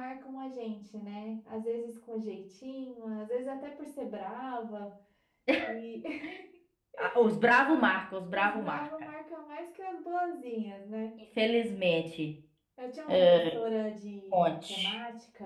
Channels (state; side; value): identical; both; correlation 1.00